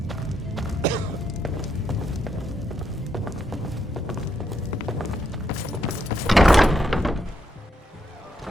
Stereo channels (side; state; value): both; normal; correlation 0.79